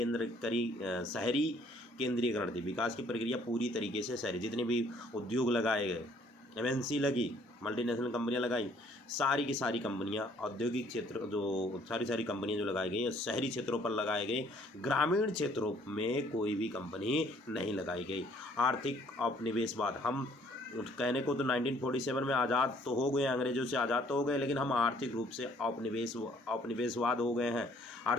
केंद्रीकरण थी। विकास की प्रक्रिया पूरी तरीके से शहरी, जितने भी उद्योग लगाए गए, एमएनसी लगी, मल्टीनेशनल कंपनियां लगाई, सारी की सारी कंपनियां औद्योगिक क्षेत्र जो सारी कंपनियां जो लगाई गई शहरी क्षेत्रों पर लगाए गए। ग्रामीण क्षेत्रों में कोई भी कंपनी नहीं लगाई गई। आर्थिक औपनिवेशवाद, हम कहने को तो 1947 में आज़ाद तो हो गए, अंग्रेजों से आज़ाद तो हो गए, लेकिन हम आर्थिक रूप से औपनिवेशवाद हो गए हैं।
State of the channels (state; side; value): normal; both; correlation 0.61